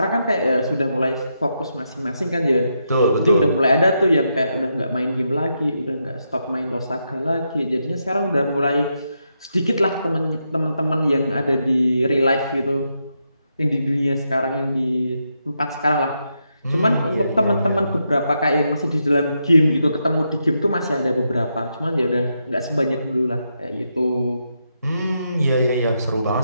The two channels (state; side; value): inverted; both; correlation -0.83